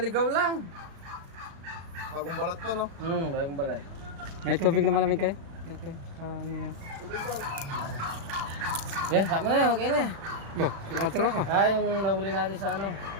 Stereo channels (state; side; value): late; left; 36 ms